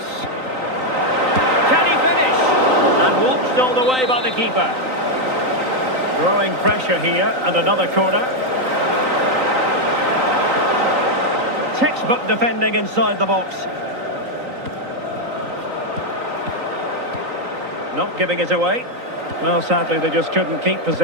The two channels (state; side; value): late; left; 3.9 ms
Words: Can he finish? And watched all the way by the keeper. Growing pressure here, and another corner. Textbook defending inside the box. Not giving it away. Well, sadly, they just couldn't keep